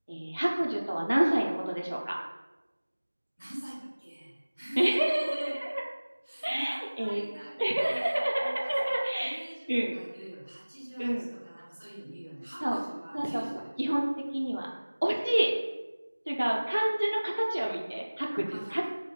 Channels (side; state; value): both; inverted; correlation -1.00